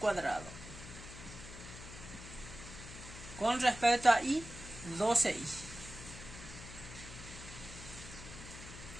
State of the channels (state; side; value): noise; left; hum, 13 dB below the sound